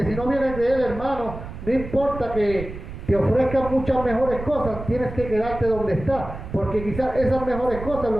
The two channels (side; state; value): right; noise; rumble, 10 dB below the sound